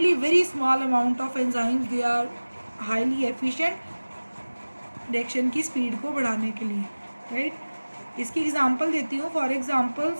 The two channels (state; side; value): inverted; both; correlation -1.00